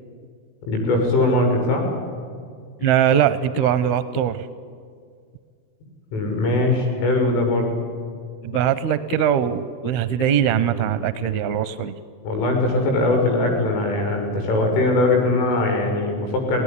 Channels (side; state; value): right; late; 16 ms